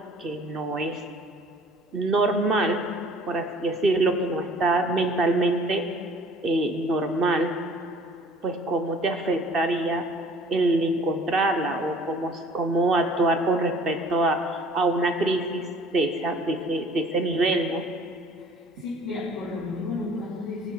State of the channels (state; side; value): normal; both; correlation 0.52